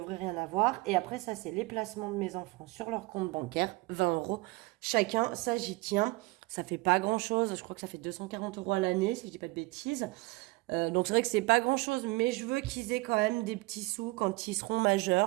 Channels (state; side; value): quieter; left; 23.3 dB